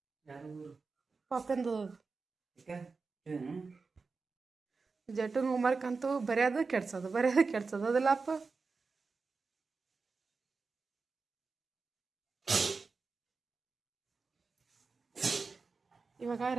ಪಾಪಂದು ಜಟನ್ ಹೋಮ್ವರ್ಕ್ ಅಂತೂ ಬರೆಯೋದು ಕೆಡ್ಸೋದು ಅದಲ್ಲಪ್ಪ. ಇವಾಗ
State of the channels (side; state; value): left; quieter; 4.4 dB